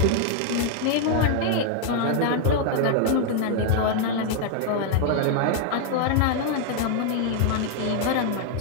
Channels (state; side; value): different; both; correlation 0.00